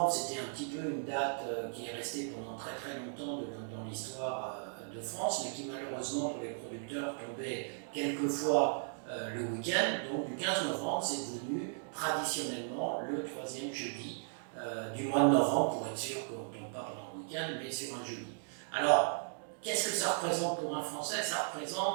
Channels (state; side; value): silent; left; digital silence